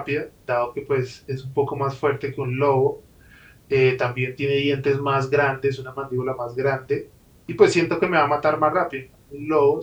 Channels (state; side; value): identical; both; correlation 1.00